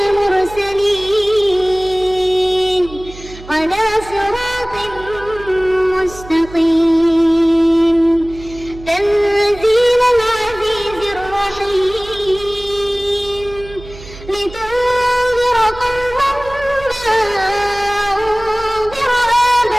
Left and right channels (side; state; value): right; noise; hum, 17 dB below the sound